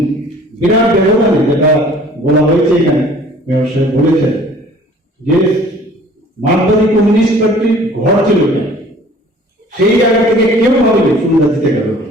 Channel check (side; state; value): both; normal; correlation 0.51